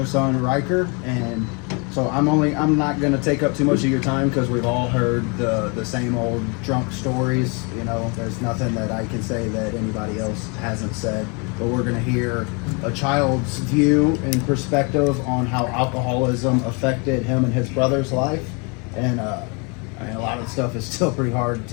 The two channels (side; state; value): right; quieter; 32.6 dB